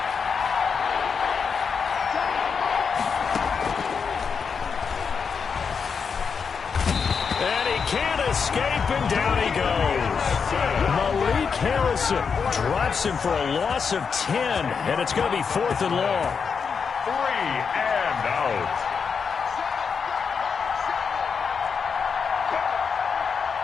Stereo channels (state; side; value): quieter; right; 6.0 dB